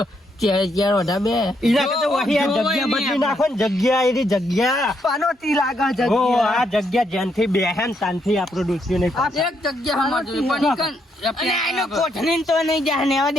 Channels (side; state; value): both; normal; correlation 0.76